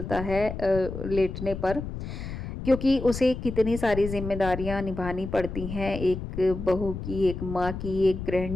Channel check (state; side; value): noise; left; rumble, 7 dB below the sound